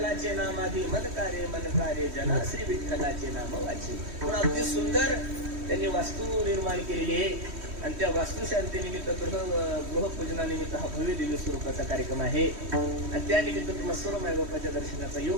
नामाधी मनकारे जना श्री विठ्ठलाचे नाम वाचे. म्हणून अगदी सुंदर त्यांनी वास्तू निर्माण केलेली आहे आणि त्या वास्तुशांतीनिमित्त गृहपूजनानिमित्त हा भव्य दिव्य स्वरूपाचा कार्यक्रम आहे आणि त्यानिमित्त तुम्हाला सर्व मायबापाच्या दर्शनाचा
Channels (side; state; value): left; late; 3.1 ms